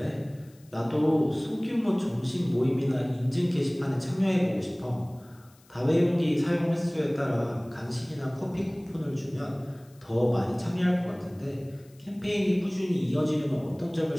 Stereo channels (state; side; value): noise; left; hiss, 30 dB below the sound